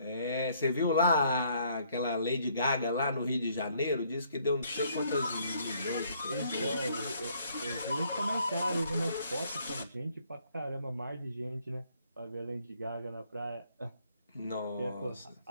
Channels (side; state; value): both; inverted; correlation -0.66